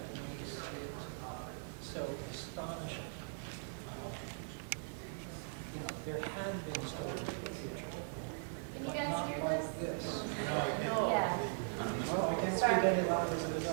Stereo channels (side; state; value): left; silent; 51 dB below the other